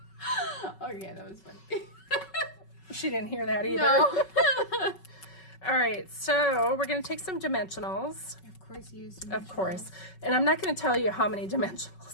Okay, that was funny. She didn't hear that either. No. All right, so we're going to take some dimensionals. Of course you use dimensionals. Of course. And I'm not going to tell you how many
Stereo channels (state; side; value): late; right; 5.3 ms